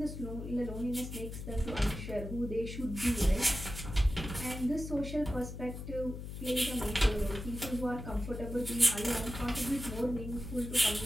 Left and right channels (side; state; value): left; noise; hum, 8 dB below the sound